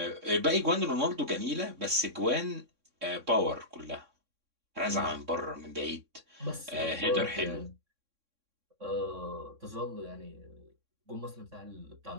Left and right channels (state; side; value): late; left; 3.6 ms